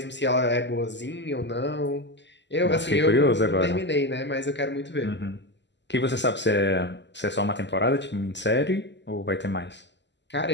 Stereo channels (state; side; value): late; right; 0.51 ms